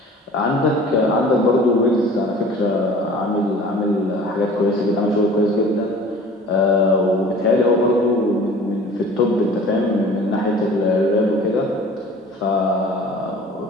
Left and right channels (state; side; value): normal; both; correlation 0.45